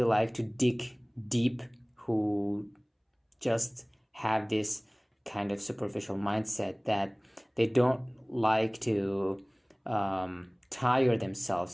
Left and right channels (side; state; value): both; identical; correlation 1.00